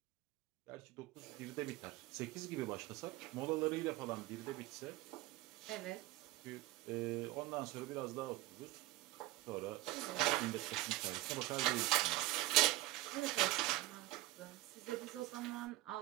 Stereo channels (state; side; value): quieter; left; 18.2 dB